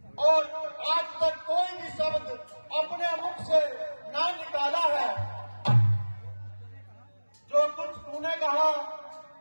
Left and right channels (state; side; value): inverted; both; correlation -1.00